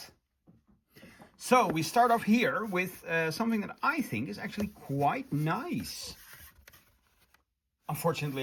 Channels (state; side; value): identical; both; correlation 1.00